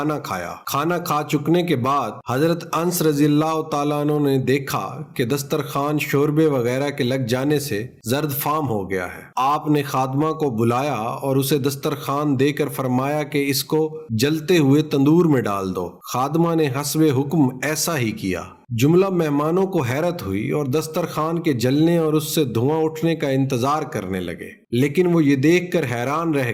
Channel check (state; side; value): identical; both; correlation 1.00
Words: खाया। खाना खा चुकने के बाद हजरत अंस रजी अल्लाह ताला अन्हो ने देखा कि दस्तरखान शोरबे वगैरह के लग जाने से जर्द फाम हो गया है। आपने खादमा को बुलाया और उसे दस्तरखान देकर फरमाया कि इसको जलते हुए तंदूर में डाल दो। खादमा ने हस्बे हुक्म ऐसा ही किया। जुमला मेहमानों को हैरत हुई और दस्तरखान के जलने और उससे धुआं उठने का इंतजार करने लगे, लेकिन वो ये देखकर हैरान रह